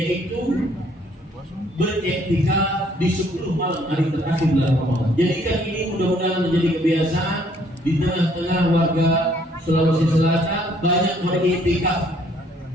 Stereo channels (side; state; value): both; normal; correlation 0.64